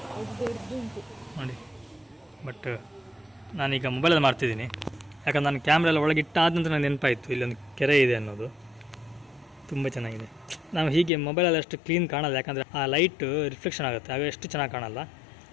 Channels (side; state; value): right; drops out; at 11.1 s